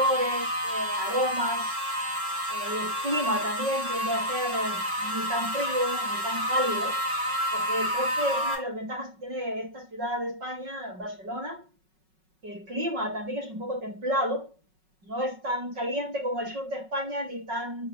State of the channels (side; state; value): left; late; 5.4 ms